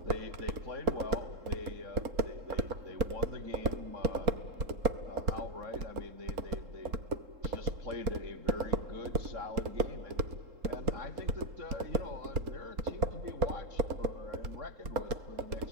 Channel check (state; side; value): late; left; 3.7 ms